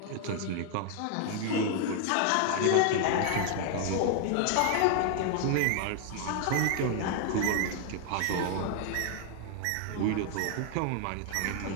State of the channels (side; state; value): both; different; correlation 0.00